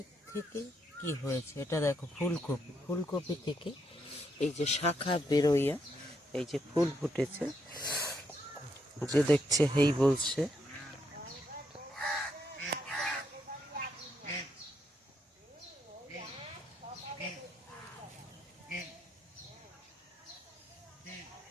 থেকে কি হয়েছে। এটা দেখো ফুলকপি, ফুলকপি থেকে এই যে শাখা বেরোইয়া এই যে ফুল ফুটেছে, যে দেখছে হেই বলছে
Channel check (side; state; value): both; normal; correlation 0.77